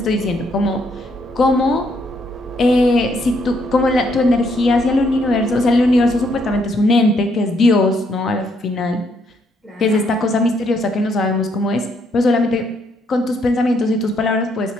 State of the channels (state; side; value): normal; both; correlation 0.72